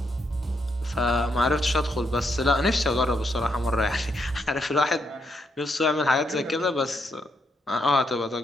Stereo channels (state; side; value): normal; both; correlation 0.78